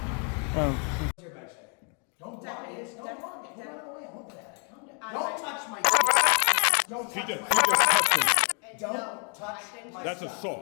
Oh. Don't touch my Don't She touch just my touched him. Don't touch my That's stuff.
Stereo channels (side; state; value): right; quieter; 37.9 dB